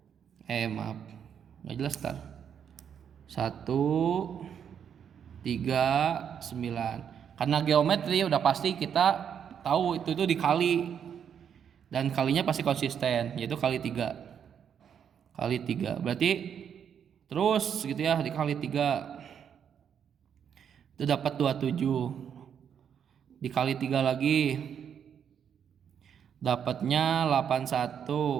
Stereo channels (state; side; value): quieter; left; 8.1 dB